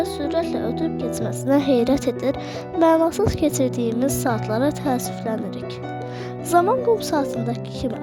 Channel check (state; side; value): identical; both; correlation 1.00